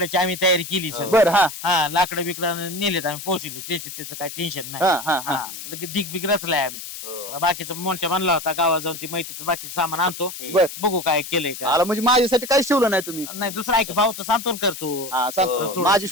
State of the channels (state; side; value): noise; left; hiss, 10 dB below the sound